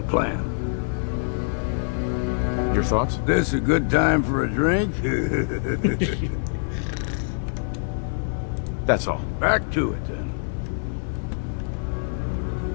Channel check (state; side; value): silent; right; 57 dB below the other